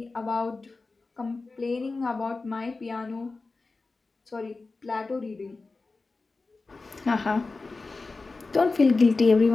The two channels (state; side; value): quieter; right; 3.7 dB